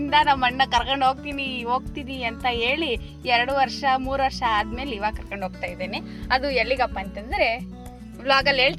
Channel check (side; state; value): both; identical; correlation 1.00